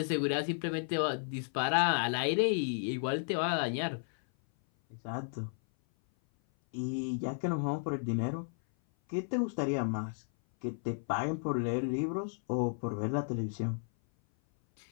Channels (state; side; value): silent; right; 55 dB below the other